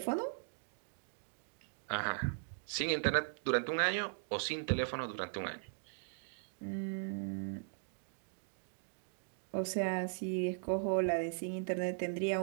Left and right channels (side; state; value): left; silent; digital silence